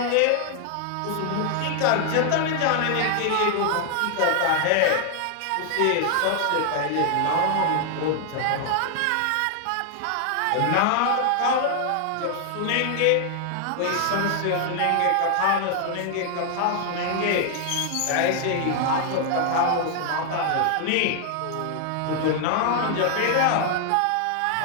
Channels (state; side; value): different; both; correlation 0.00